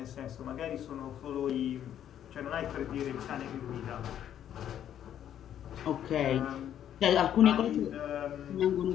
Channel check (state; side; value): quieter; right; 10.3 dB